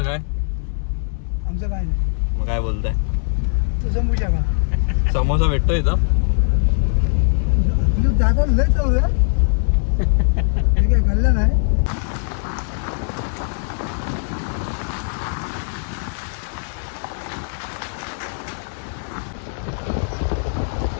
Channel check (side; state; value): right; silent; 63 dB below the other